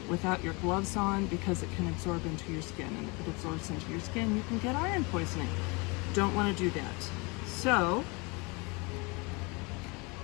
without your gloves on because it can absorb into your skin, and if it absorbs into your skin, you can get iron poisoning. Don't want to do that. So,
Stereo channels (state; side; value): quieter; right; 28.3 dB